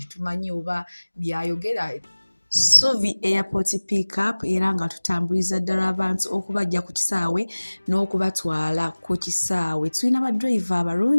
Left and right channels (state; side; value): inverted; both; correlation -1.00